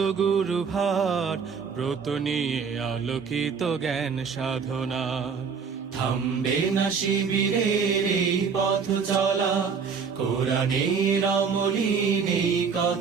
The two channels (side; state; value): left; quieter; 5.9 dB